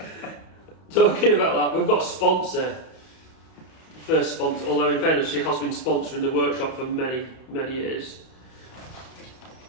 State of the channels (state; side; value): late; right; 31 ms